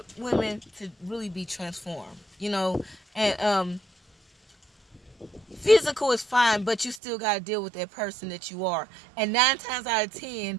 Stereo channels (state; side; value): drops out; left; at 7.0 s